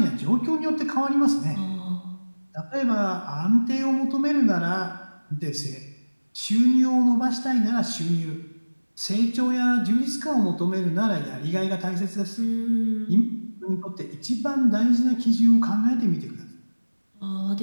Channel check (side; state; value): both; inverted; correlation -1.00